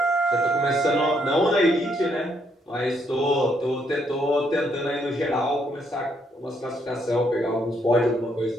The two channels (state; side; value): normal; both; correlation 0.73